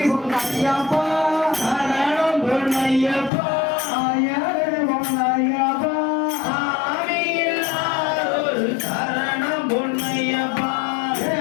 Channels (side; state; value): right; drops out; at 3.3 s